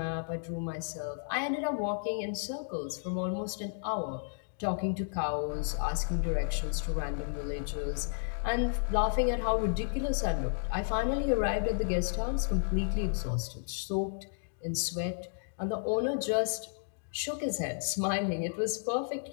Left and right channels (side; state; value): right; silent; digital silence